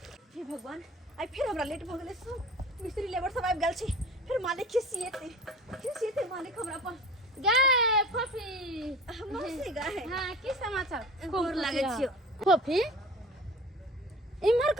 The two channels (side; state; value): both; normal; correlation 0.40